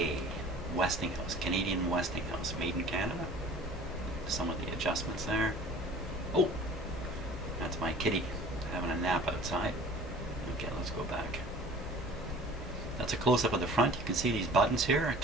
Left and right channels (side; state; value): both; normal; correlation 0.46